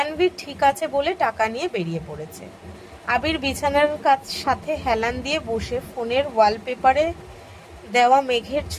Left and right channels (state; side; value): identical; both; correlation 1.00